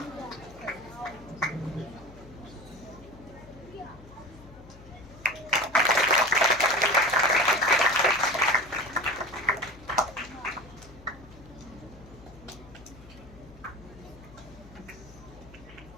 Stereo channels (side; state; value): left; noise; hum, 20 dB below the sound